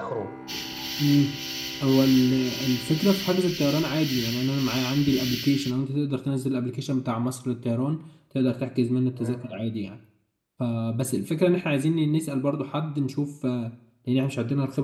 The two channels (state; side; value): identical; both; correlation 1.00